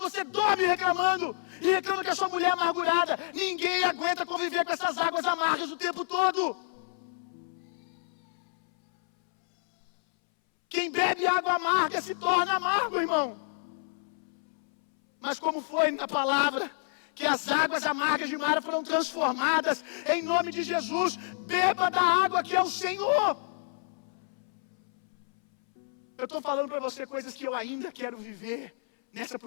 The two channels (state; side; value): silent; right; 59 dB below the other